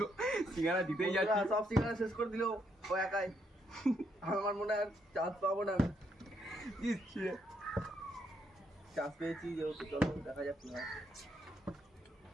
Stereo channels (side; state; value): both; normal; correlation 0.75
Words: সিঙ্গারা জিতেই যাচ্ছে। সব সিঙ্গারা শেষ করে দিল ও একাই। আমার মনে হয় চান্স পাবো না। চান্স পেয়েছি যেহেতু, চলো দেখা যাক কি হয়।